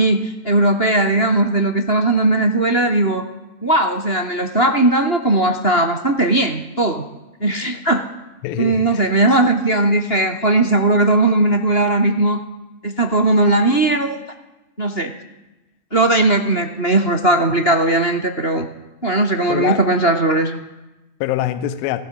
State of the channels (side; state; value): right; late; 2.9 ms